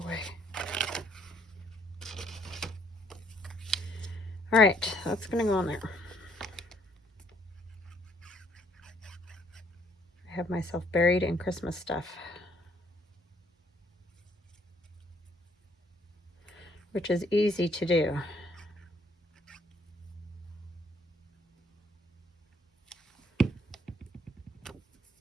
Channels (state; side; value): normal; both; correlation 0.65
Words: way. All right, that's gonna go on there. I have myself buried in Christmas stuff, which is easy to do.